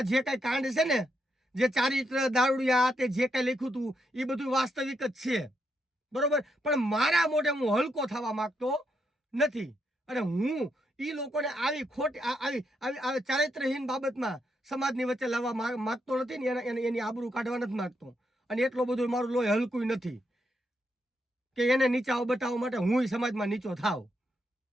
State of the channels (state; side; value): normal; both; correlation 0.80